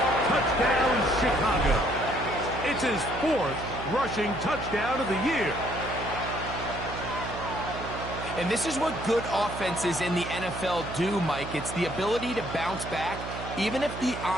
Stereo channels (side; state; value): right; noise; hum, 9 dB below the sound